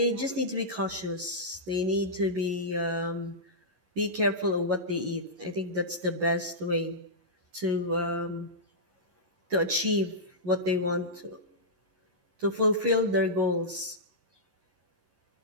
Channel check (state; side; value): late; left; 11 ms